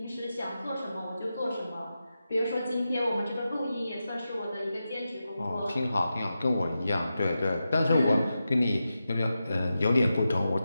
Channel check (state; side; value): inverted; both; correlation -0.91